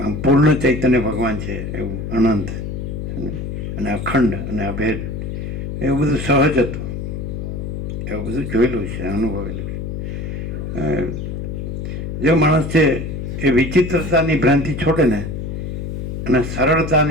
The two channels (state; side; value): noise; left; hum, 5 dB below the sound